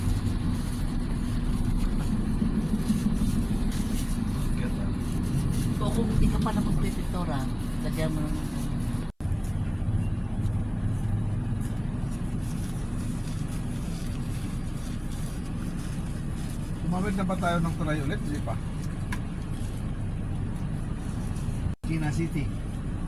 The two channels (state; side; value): identical; both; correlation 1.00